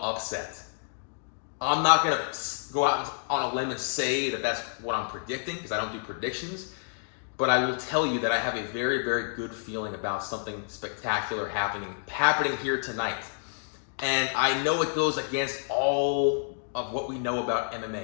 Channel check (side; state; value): right; silent; digital silence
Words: upset. I'm not going to go out on a limb and say that that's what I'm predicting, because I don't do predictions. But I will tell you that I have a very, very good feeling about something spectacular happening here tonight. And I know it goes against all of what we know about